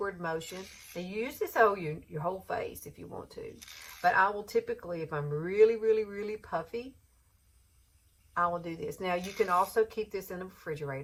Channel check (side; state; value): both; identical; correlation 1.00